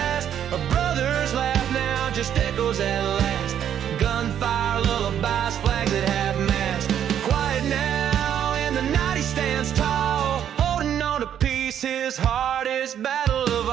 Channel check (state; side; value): quieter; left; 9.6 dB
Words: A brother's laugh now just echoes at last. Gunfire, lullabies, flags that have mast. Quiet now, in the night he stands tall, holding on to peace, his hardest battle of